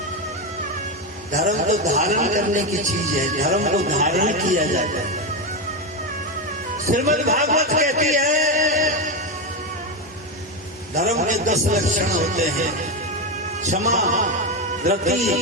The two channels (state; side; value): normal; both; correlation 0.12